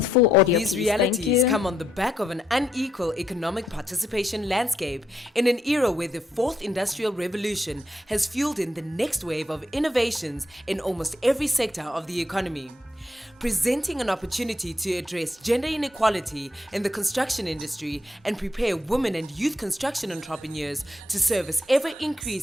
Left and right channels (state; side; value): normal; both; correlation 0.78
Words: full audio, These please. Thank realities you. come on the back of an unequal economic participation landscape in an era where the fourth industrial revolution has fueled in the next wave of innovations in almost every sector of the economy, presenting an opportunity to address gender inequality in the construction industry and prepare women and youth construction entrepreneurs to service